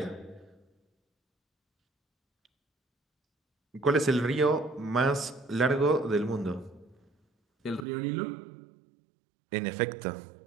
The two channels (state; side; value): drops out; left; at 7.9 s